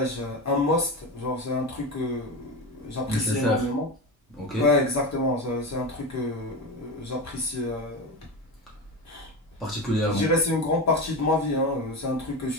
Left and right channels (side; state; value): both; normal; correlation 0.22